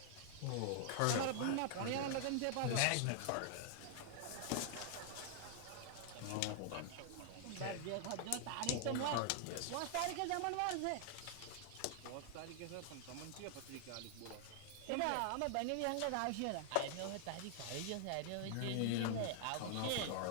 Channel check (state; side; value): different; both; correlation -0.01